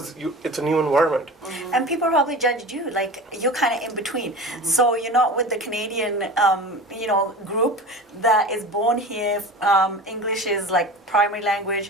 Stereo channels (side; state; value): both; normal; correlation 0.34